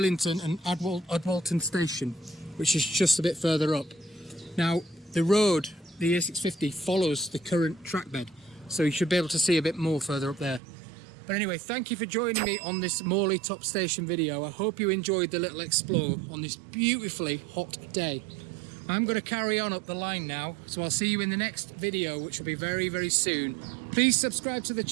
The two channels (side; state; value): left; drops out; at 10.6 s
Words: and Adwalton Station, which is just a bit further up. Now the road, the A650, follows the current track bed, so you should be able to see a bit more further up there. But anyway, thank you for joining me on this Morley Top Station video. I hope you enjoyed the little explore on this beautifully hot day. I'm going to carry on up the line now, so I'll see you in the next video, which will be very, very soon. Please subscribe to the